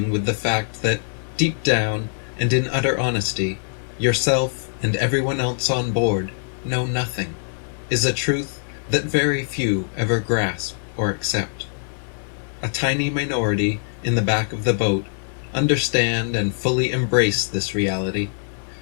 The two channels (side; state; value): right; silent; digital silence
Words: with the fact that, deep down and in utter honesty, yourself and everyone else on board know nothing is a truth that very few ever grasp or accept. A tiny minority in the back of the boat understand and fully embrace this reality,